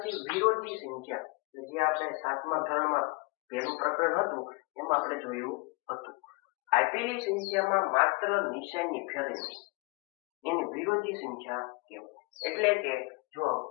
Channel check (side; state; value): right; quieter; 27.6 dB